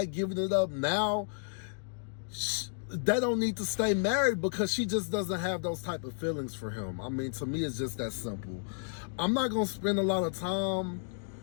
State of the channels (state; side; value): silent; right; digital silence